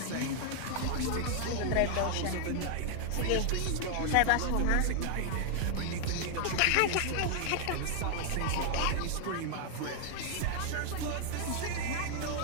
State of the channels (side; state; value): both; different; correlation 0.00